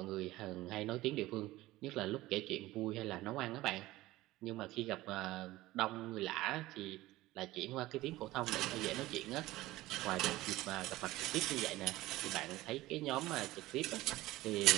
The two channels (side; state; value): left; quieter; 17.6 dB